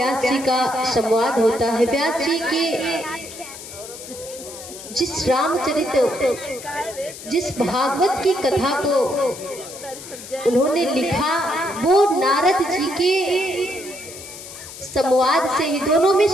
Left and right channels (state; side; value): noise; left; hiss, 14 dB below the sound